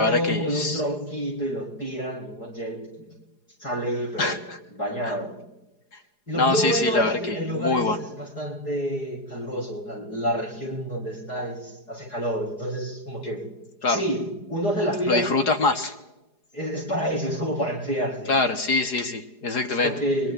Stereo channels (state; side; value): late; right; 4.9 ms